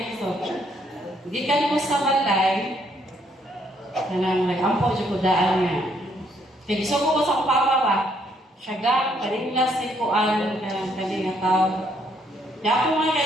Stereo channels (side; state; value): both; normal; correlation 0.70